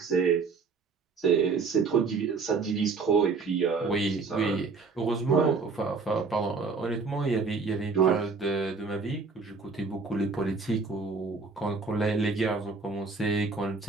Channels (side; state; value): left; quieter; 4.5 dB